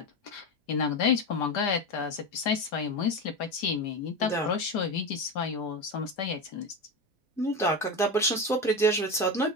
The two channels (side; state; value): both; normal; correlation 0.19